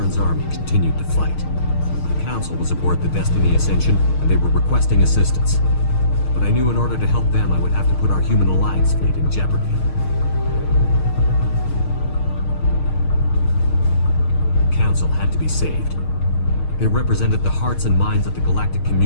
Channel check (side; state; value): right; late; 6.5 ms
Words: army continued to fight. The Council was aboard the Destiny Ascension, and they were requesting assistance. But I knew in order to help them, I would have to put our human alliance fleet in jeopardy. The Council had to be saved. They represented the hearts and minds of the galactic